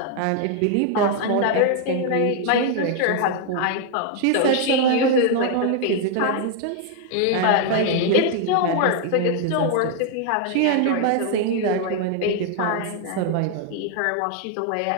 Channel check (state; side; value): different; both; correlation 0.00